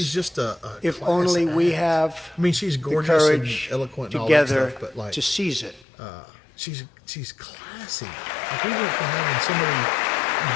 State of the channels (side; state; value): right; drops out; at 5.9 s